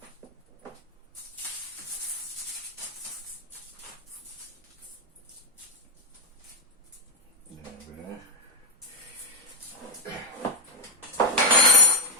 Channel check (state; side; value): normal; both; correlation 0.02